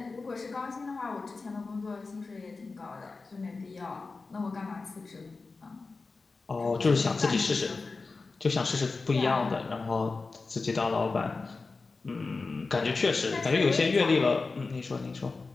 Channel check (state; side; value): quieter; right; 4.0 dB